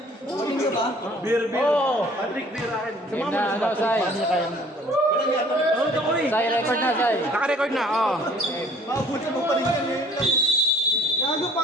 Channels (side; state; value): both; normal; correlation 0.55